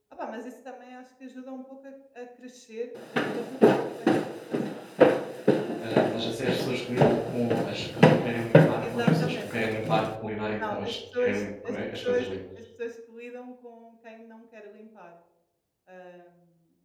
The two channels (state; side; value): identical; both; correlation 1.00